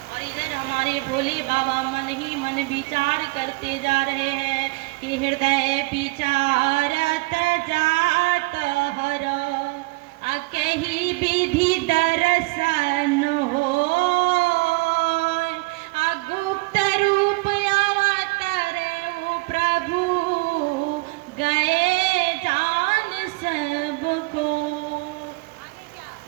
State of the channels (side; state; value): left; quieter; 26.0 dB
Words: और इधर हमारे भोले बाबा मन ही मन विचार करते जा रहे हैं कि हृदय विचारत जात हर, कहीं विधि दर्शन हो, गुप्त रूप अवतरे प्रभु, गए जान सबको। आगे क्या